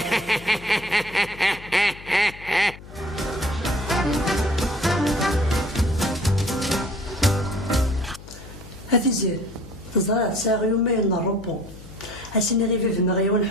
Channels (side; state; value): left; noise; hum, 17 dB below the sound